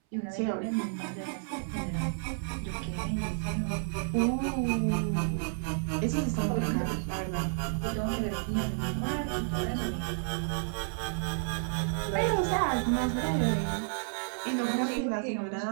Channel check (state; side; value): silent; left; 57 dB below the other